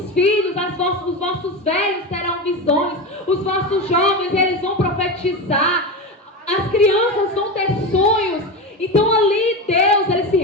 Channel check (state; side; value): normal; both; correlation 0.20